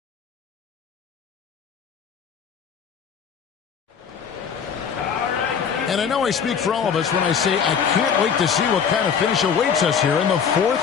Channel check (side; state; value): right; quieter; 7.0 dB